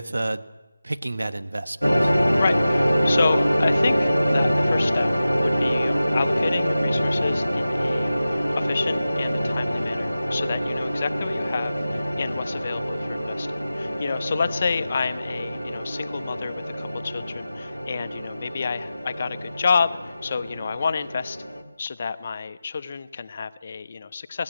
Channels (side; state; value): both; inverted; correlation -0.94